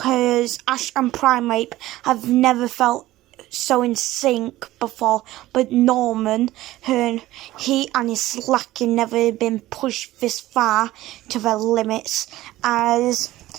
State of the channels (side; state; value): left; quieter; 16.3 dB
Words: Ash and Primeape have never felt so in sync before, but Norman, he and his Slacking never been pushed this far to their limits, as